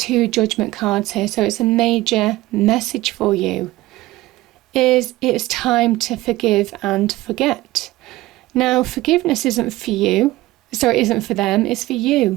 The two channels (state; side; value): quieter; left; 17.8 dB